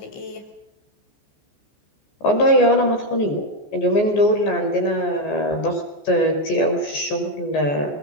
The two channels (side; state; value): right; late; 14 ms